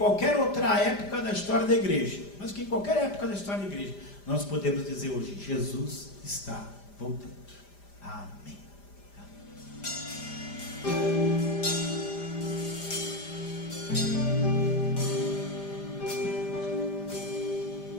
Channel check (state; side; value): late; right; 5.0 ms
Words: outra época da história da igreja, mais do que em qualquer época da história da igreja, nós podemos dizer hoje: Jesus está voltando. Amém.